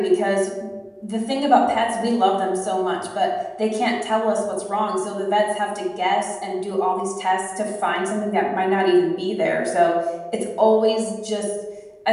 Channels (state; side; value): identical; both; correlation 1.00